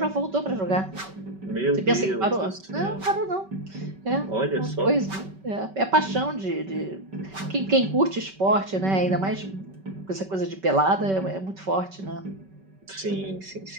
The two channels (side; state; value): left; late; 5.2 ms